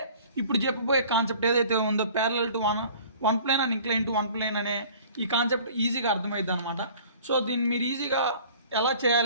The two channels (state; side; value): inverted; both; correlation -0.48